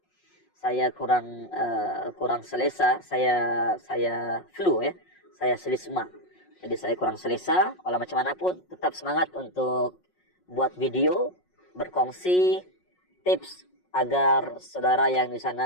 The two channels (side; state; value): right; late; 5.5 ms